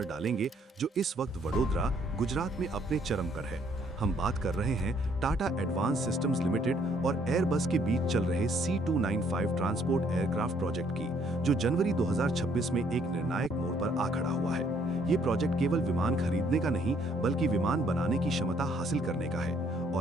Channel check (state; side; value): normal; both; correlation 0.65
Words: डालेंगे जो इस वक्त वडोदरा, गुजरात में अपने चरम पर है। हम बात कर रहे हैं टाटा एडवांस सिस्टम्स लिमिटेड और एयरबस के बीच चल रहे C295 ट्रांसपोर्ट एयरक्राफ्ट प्रोजेक्ट की, जो जनवरी 2026 में एक निर्णायक मोड़ पर आ खड़ा हुआ है। ये प्रोजेक्ट केवल विमान खरीदने का नहीं, बल्कि विमान बनाने की क्षमता हासिल करने का है।